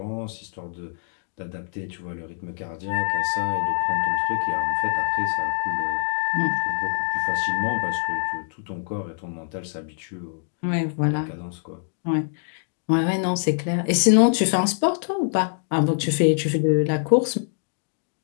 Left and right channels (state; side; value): silent; right; digital silence